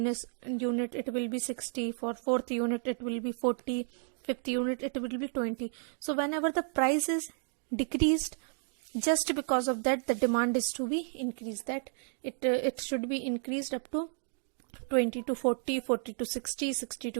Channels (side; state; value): left; silent; 56 dB below the other